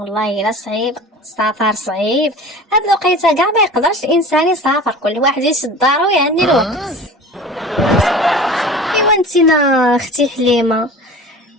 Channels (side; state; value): both; normal; correlation 0.38